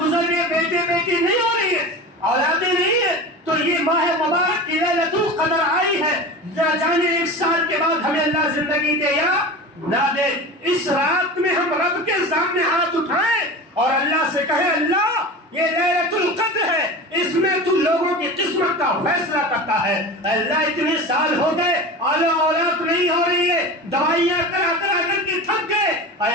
گئے, بیٹے بیٹی نہیں ہو رہی ہے, اولادیں نہیں ہے, تو یہ ماہ مبارک کی لیلۃ القدر آئی ہے. نہ جانے 1 سال کے بعد ہمیں اللہ زندگی دے یا نہ دے, اس رات میں ہم رب کے سامنے ہاتھ اٹھائیں اور اللہ سے کہیں اللہ یہ لیلۃ القدر ہے, اس میں تو لوگوں کی قسمت کا فیصلہ کرتا ہے. اللہ اتنے سال ہو گئے, اولاد نہیں ہو رہی ہے, دوائیاں کرا کرا کر کے تھک گئے, اے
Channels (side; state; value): both; normal; correlation 0.31